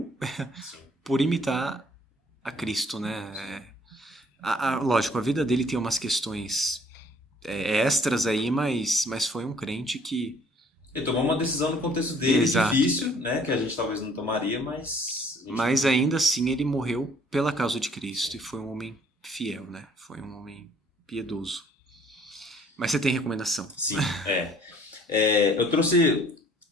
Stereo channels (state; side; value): normal; both; correlation 0.59